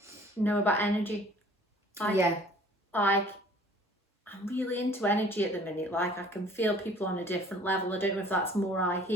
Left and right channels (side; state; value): both; normal; correlation 0.52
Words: know about energy. Like, I'm really into energy at the minute. Like, I can feel people on a different level. I don't know if that's more I